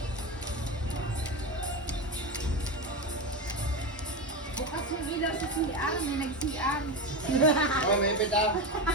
Bukas yung ilaw sa CR, may nag-CR. Oh, may pita.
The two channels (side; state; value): both; normal; correlation 0.18